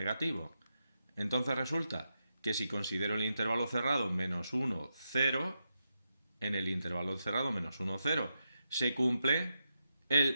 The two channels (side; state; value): both; inverted; correlation -0.86